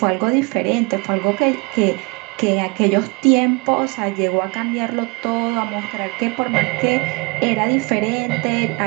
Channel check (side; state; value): left; quieter; 28.0 dB